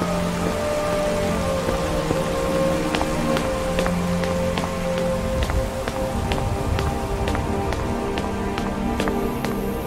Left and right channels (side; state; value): both; identical; correlation 1.00